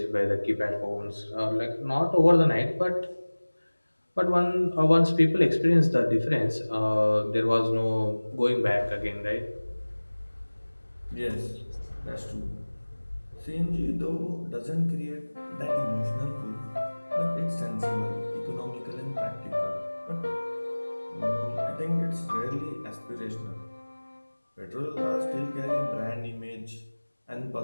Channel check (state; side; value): inverted; both; correlation -1.00